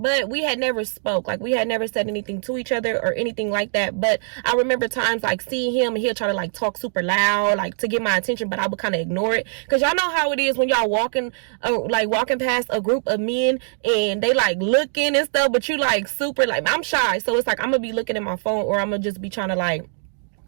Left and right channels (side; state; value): left; silent; digital silence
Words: we had never spoke. Like, we had never said anything to each other or anything like that. But I remember times like seeing him, and he'll try to like talk super loud, like to get my attention, but I would kind of ignore it, because y'all know how it is when y'all walking past a group of men and they like looking and stuff, but you like super, like, I'm shy, so it's like I'm gonna be looking at my phone, or I'm gonna just be trying to like,